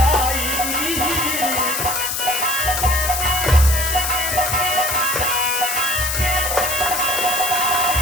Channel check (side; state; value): left; noise; hiss, 2 dB below the sound